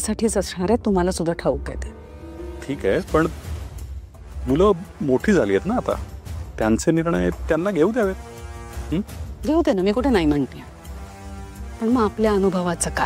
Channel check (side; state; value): both; identical; correlation 1.00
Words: असणार आहे, तुम्हाला सुद्धा ठाऊक आहे ते। ठीक आहे, पण मुलं मोठी झाली आहेत ना आता, त्यांचे निर्णय त्यांना घेऊ द्यावेत। घेऊ दे ना, मी कुठे नाही म्हणते, पण मग आपल्या अनुभवाचं